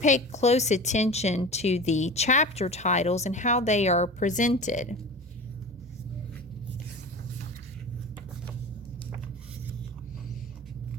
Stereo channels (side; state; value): both; normal; correlation 0.33